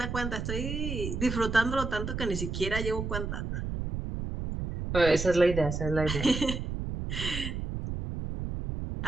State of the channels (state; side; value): noise; right; rumble, 4 dB below the sound